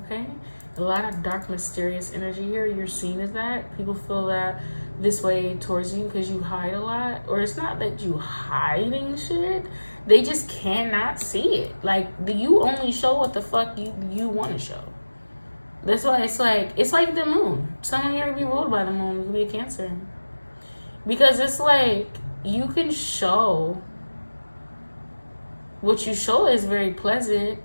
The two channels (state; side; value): inverted; both; correlation -1.00